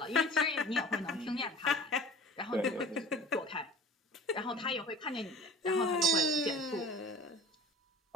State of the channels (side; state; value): both; normal; correlation 0.41